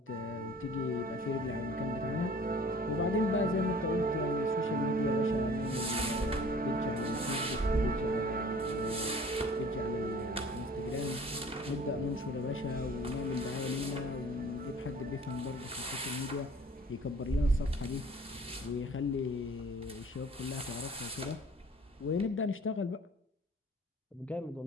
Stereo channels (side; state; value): both; normal; correlation 0.49